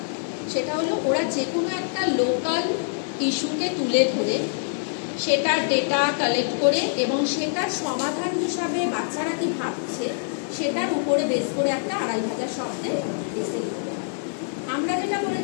সেটা হলো ওরা যে কোনো একটা লোকাল ইস্যুকে তুলে ধরে সেটার ডেটা কালেক্ট করে এবং সেটার সমাধান হিসাবে বাচ্চারা কি ভাবছে সেটার উপরে বেস করে একটা 2500 শব্দে এসে লিখতে হয়। আমরা যেটা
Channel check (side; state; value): right; silent; digital silence